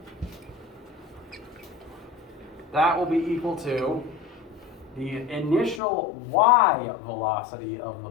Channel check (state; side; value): drops out; right; at 5.8 s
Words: That will be equal to the initial y velocity of the